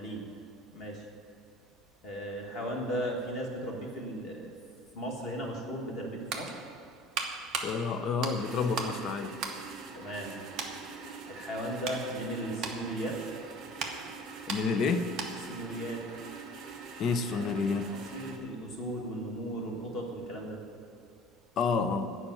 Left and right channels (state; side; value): normal; both; correlation 0.46